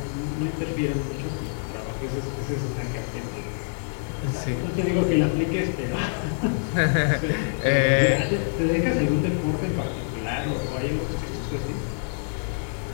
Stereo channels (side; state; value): right; silent; 61 dB below the other